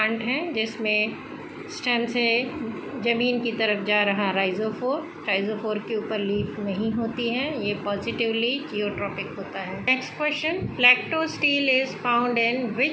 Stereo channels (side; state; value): both; identical; correlation 1.00